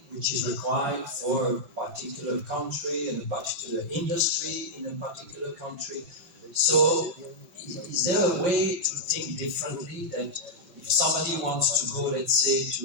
which is required for a particular country and a particular industry in a particular country. So, is there a way to think differently that if somebody wants to go, let's say,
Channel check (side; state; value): left; late; 5.5 ms